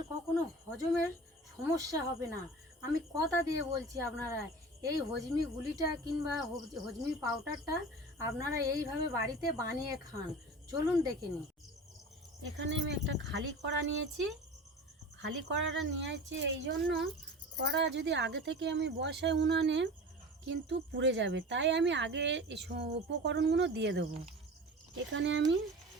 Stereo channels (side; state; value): both; normal; correlation 0.36